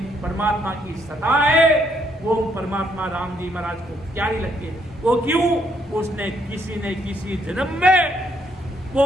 परमात्मा की सत्ता है। वो परमात्मा राम जी महाराज को प्यारी लगती है। वो क्यों? उसने किसी जन्म में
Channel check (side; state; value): both; normal; correlation 0.72